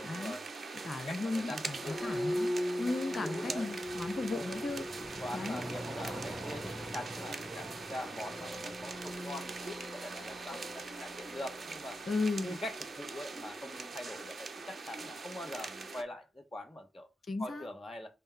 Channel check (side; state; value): both; normal; correlation 0.89